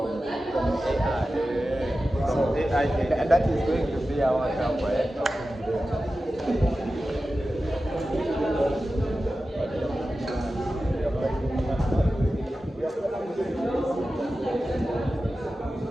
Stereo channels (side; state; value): both; normal; correlation 0.94